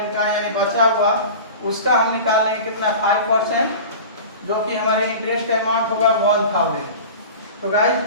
का, यानी बचा हुआ उसका हम निकाल लेंगे कितना 5%। जो कि हमारे इंटरेस्ट अमाउंट होगा 1000। तो गाइस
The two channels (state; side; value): inverted; both; correlation -0.36